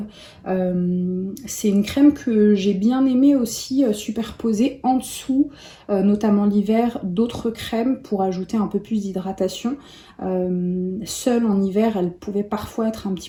C'est une crème que j'ai bien aimée aussi superposée en dessous, notamment l'hiver, d'autres crèmes pour ajouter un peu plus d'hydratation. Seule en hiver, elle pouvait parfois être un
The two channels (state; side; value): identical; both; correlation 1.00